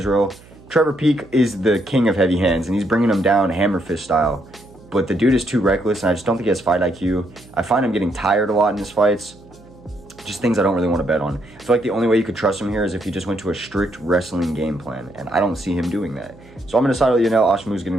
Trevor Peek is the king of heavy hands, and he's bringing him down hammer fist style. But the dude is too reckless, and I just don't think he has fight IQ. I find him getting tired a lot in his fights. Just things I don't really want to bet on. I feel like the only way you could trust him here is if he just went to a strict wrestling game plan, and I don't see him doing that. So I'm going to side with Yanal Ashmuz getting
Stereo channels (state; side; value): noise; right; hum, 24 dB below the sound